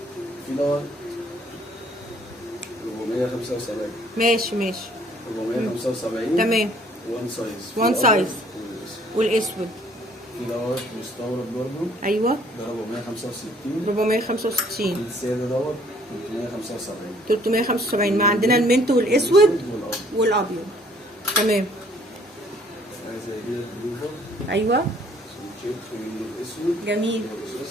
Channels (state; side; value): normal; both; correlation 0.60